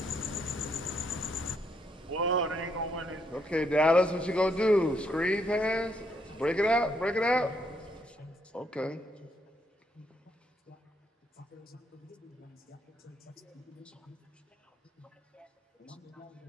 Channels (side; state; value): both; normal; correlation 0.74